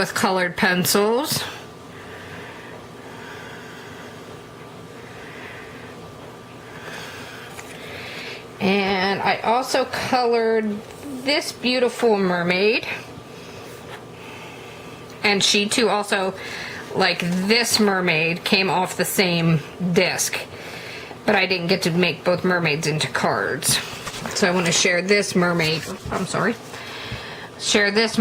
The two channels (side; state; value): both; identical; correlation 1.00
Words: colored pencils. And I also colored this beautiful mermaid, and she too also, like this mermaid, came off the same disc, but I didn't get to make both mermaids into cards. So I want to share this mermaid, share this